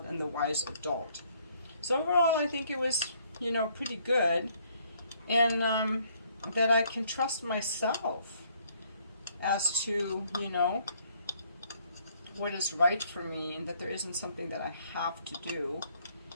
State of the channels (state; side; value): inverted; both; correlation -0.66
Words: and the wise adult. So overall, I think it was, you know, pretty good. And that I can trust myself as to, you know, what is right for me, and that there isn't something that I have to do.